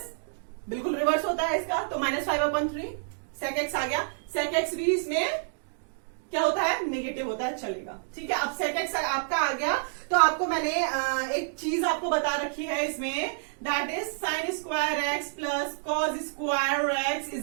बिल्कुल रिवर्स होता है इसका, तो -5/3 sec x आ गया। sec x भी इसमें क्या होता है, नेगेटिव होता है, चलेगा। ठीक है, अब sec x आपका आ गया तो आपको मैंने एक चीज आपको बता रखी है इसमें, that is sin square x plus cos square x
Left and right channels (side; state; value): left; silent; digital silence